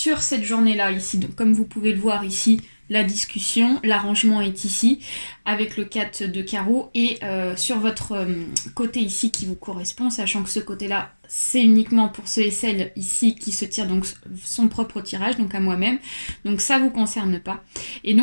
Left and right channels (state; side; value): inverted; both; correlation -1.00